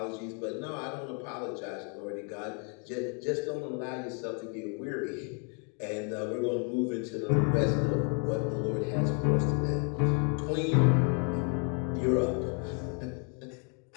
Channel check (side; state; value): right; quieter; 38.5 dB